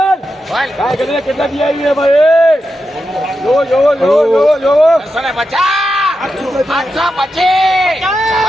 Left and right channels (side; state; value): both; normal; correlation 0.88